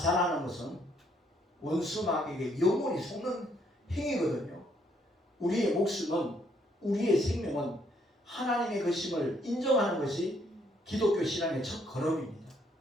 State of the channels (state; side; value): normal; both; correlation 0.69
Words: 것은 원수 마귀에게 영원히 속는 행위거든요. 우리의 목숨은, 우리의 생명은 하나님의 것임을 인정하는 것이 기독교 신앙의 첫 걸음입니다.